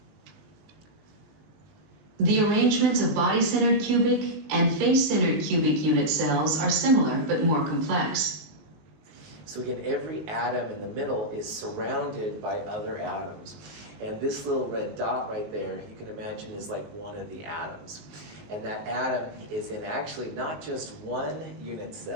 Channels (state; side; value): late; left; 19 ms